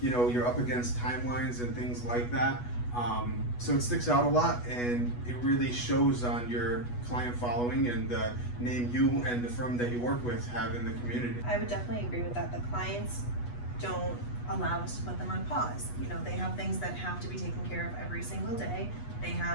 you're up against timelines and things like that. So it sticks out a lot, and it really shows on your client following and the name you and the firm that you work with have in the community. I would definitely agree with that. The clients don't allow us to put them on pause. They have things that have to be taken care of every single day. They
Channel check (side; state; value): right; late; 8.2 ms